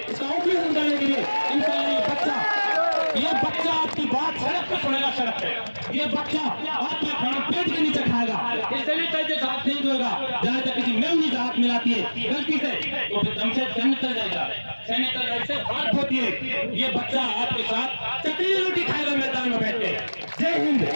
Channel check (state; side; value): inverted; both; correlation -1.00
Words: इसका ऑपरेशन करने के लिए। इंशाल्लाह ये बच्चा आपकी बात सड़क पर सुनेगा, सड़क पे ये बच्चा आपका खाना पेट के नीचे खाएगा, ये सैनिटाइजर हाथ नहीं धोएगा, जहां तक किसी मेमनी से हाथ मिलाती है गलती से तो फिर दम से सैनिटाइजर से हाथ धोती है। ये बच्चा आपके साथ चटनी रोटी खाएगा मैदान में बैठ के। जय हिंद,